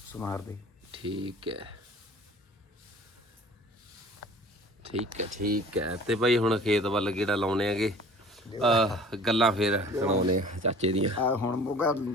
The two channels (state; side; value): normal; both; correlation 0.47